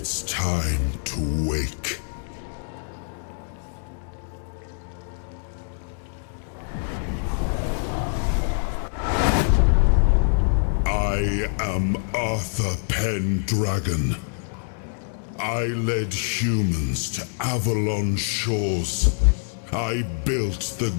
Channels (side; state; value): right; silent; digital silence